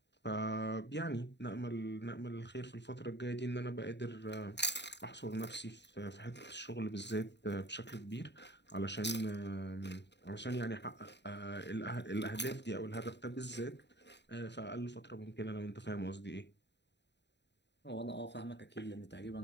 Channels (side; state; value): right; late; 0.51 ms